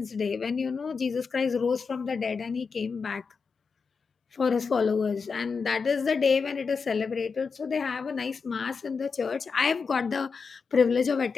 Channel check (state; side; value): quieter; right; 5.2 dB